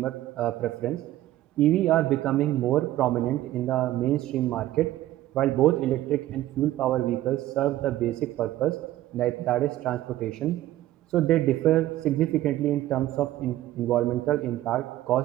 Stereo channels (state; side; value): quieter; left; 14.6 dB